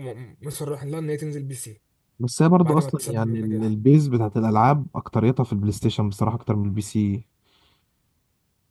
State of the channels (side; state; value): both; identical; correlation 1.00